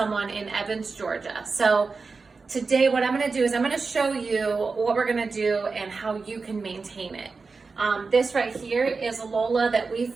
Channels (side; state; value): left; quieter; 4.4 dB